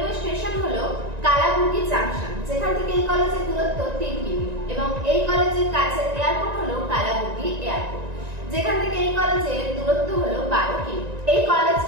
স্টেশন হলো কালাবুর্গি জাংশন, যেখান থেকে এই কলেজের দূরত্ব 3 কিমি, এবং এই কলেজের কাছে এয়ারপোর্ট হলো কালাবুর্গি এয়ারপোর্ট, যেখান থেকে এই কলেজের দূরত্ব হলো 12 কিমি। এই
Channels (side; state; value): left; late; 1.9 ms